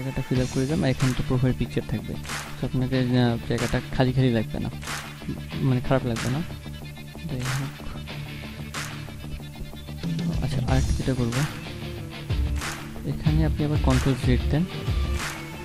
ফিল আপ করে দিলাম, আর এখানে তো প্রোফাইল পিকচার থাকবে। সো আপনাকে জায়গাটা খালি খালি লাগবে না, মানে খারাপ লাগবে না। যাই হোক, আচ্ছা, আরেকটা যেটা করবো, এখানে আপনি আবার কন্ট্রোল জেড দেন,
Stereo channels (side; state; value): both; identical; correlation 1.00